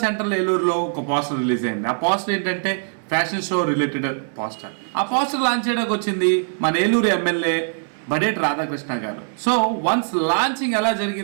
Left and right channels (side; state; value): left; silent; 64 dB below the other